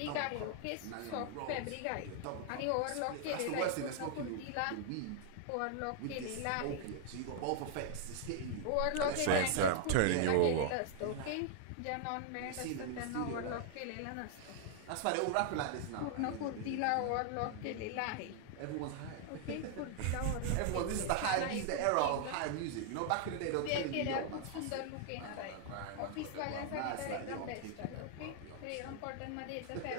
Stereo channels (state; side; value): different; both; correlation 0.00